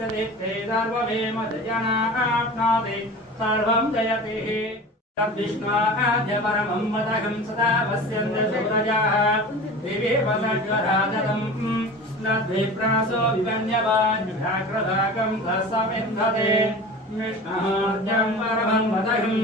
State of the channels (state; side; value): normal; both; correlation 0.36